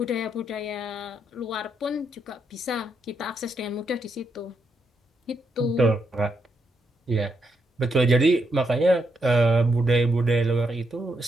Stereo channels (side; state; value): both; normal; correlation 0.79